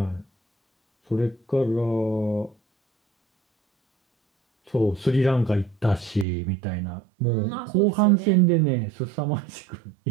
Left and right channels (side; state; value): left; drops out; at 6.2 s